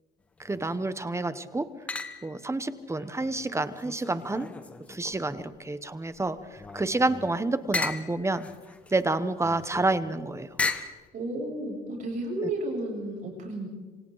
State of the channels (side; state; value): both; normal; correlation 0.69